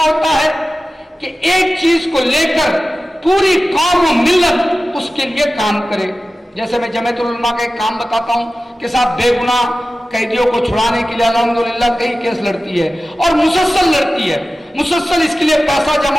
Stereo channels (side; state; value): both; normal; correlation 0.95